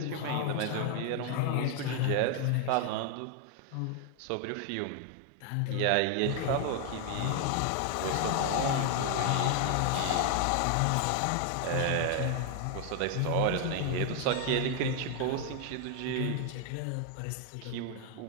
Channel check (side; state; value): both; different; correlation 0.00